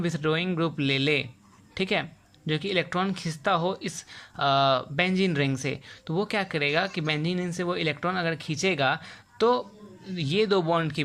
विथड्रॉइंग ग्रुप ले ले, ठीक है, जो कि इलेक्ट्रॉन खींचता हो इस बेंजीन रिंग से, तो वो क्या करेगा कि बेंजीन रिंग से वो इलेक्ट्रॉन अगर खींचेगा तो ये दो बॉन्ड के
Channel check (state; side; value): identical; both; correlation 1.00